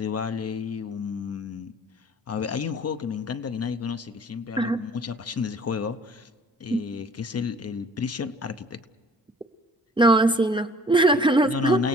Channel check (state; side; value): normal; both; correlation 0.52